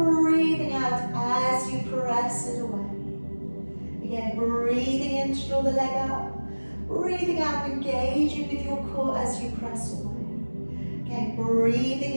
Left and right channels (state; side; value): inverted; both; correlation -1.00